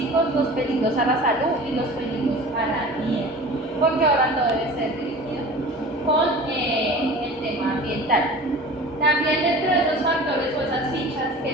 los peligros a la salud y los peligros al ambiente, porque ahora todo debe ser dirigido con el tema ambiental. También dentro de esos factores o esas fichas que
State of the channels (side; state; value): both; normal; correlation 0.39